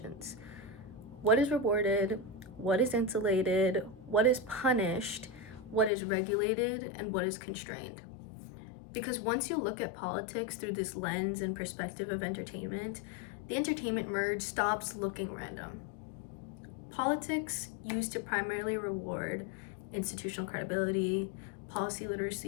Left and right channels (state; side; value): drops out; right; at 5.9 s